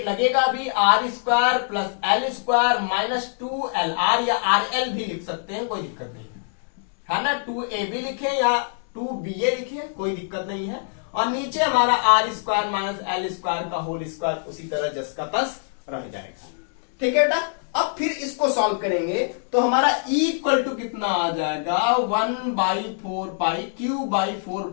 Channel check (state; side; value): silent; right; digital silence